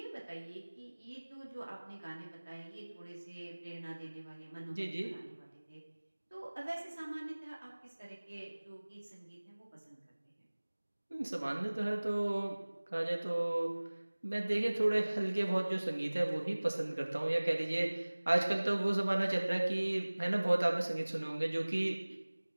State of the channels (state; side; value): inverted; both; correlation -1.00